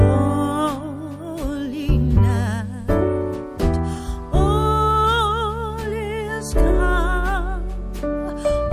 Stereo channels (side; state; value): both; identical; correlation 1.00